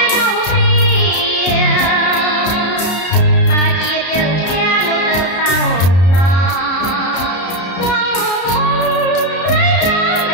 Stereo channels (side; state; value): right; late; 33 ms